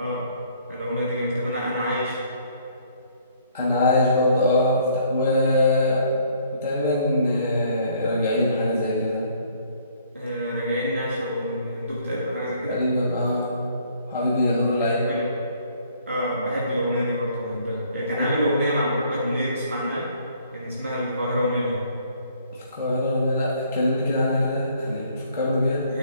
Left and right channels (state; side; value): inverted; both; correlation -0.62